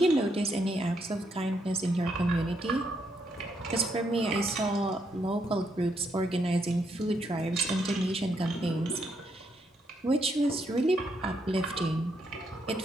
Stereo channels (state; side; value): normal; both; correlation 0.77